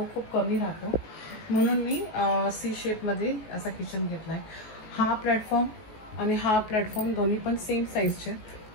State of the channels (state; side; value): late; right; 19 ms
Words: खूप कमी राहतो, म्हणून मी C शेपमध्ये असा किचन घेतला आहे. हा प्लॅटफॉर्म आणि हा प्लॅटफॉर्म दोन्ही पण सेम साईजचे,